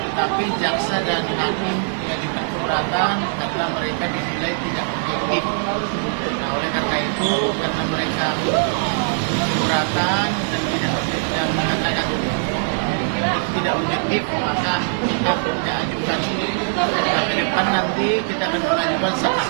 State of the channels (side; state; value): left; silent; digital silence